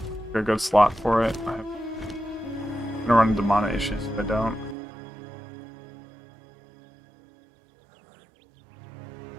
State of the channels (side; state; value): left; drops out; at 4.8 s